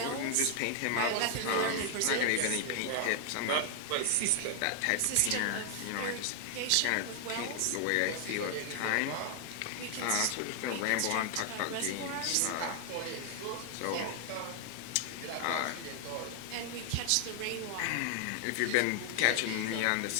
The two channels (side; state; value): both; different; correlation 0.00